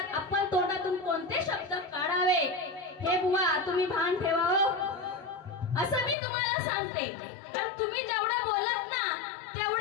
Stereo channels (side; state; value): right; drops out; at 6.2 s